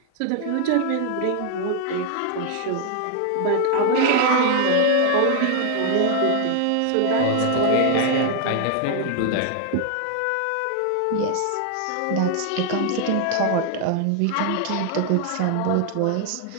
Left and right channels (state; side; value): different; both; correlation 0.00